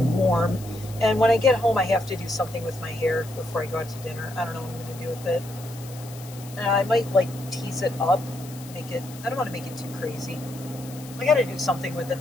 warm. And when I get home, I have to do something with my hair before I go out to dinner. I don't know what I'm going to do with it. I might like tease it up. I don't want to make it too crazy. I got to do something with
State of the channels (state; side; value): noise; left; hiss, 18 dB below the sound